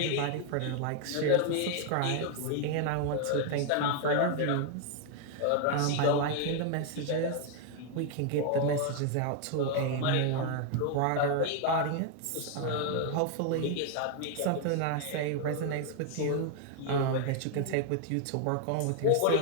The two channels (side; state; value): both; different; correlation 0.00